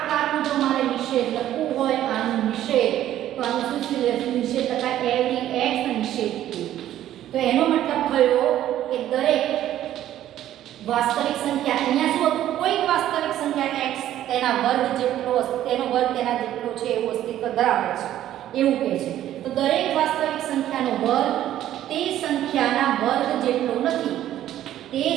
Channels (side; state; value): left; quieter; 12.4 dB